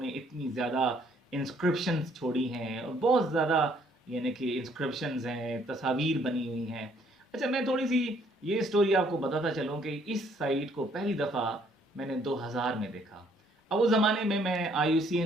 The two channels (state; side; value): normal; both; correlation 0.65